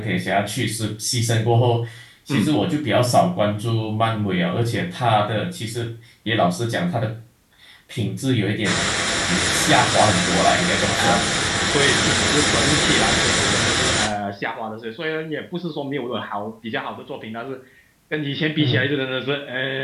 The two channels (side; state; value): both; identical; correlation 1.00